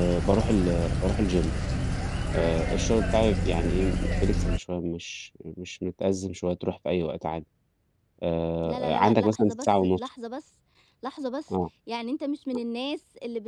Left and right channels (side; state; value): both; identical; correlation 1.00